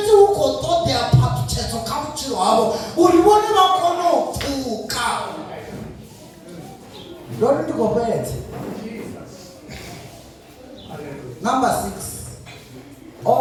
ukotodea papyedzo kamuchiro havo uri vone vakonopfuka. Ndori ndikopedze. Number 6.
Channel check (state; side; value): identical; both; correlation 1.00